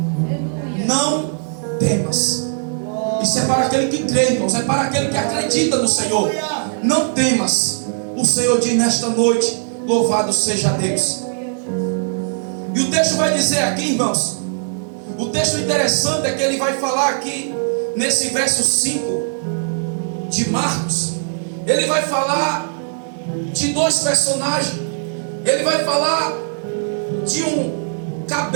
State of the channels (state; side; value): silent; left; digital silence